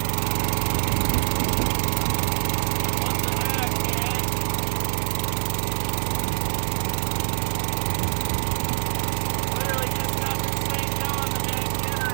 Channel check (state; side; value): silent; left; digital silence